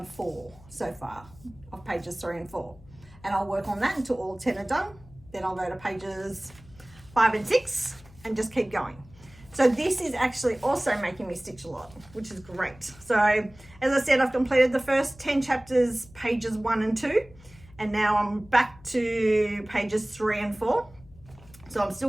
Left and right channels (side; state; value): left; noise; hum, 23 dB below the sound